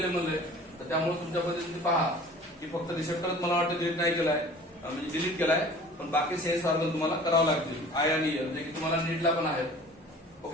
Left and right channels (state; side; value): normal; both; correlation 0.45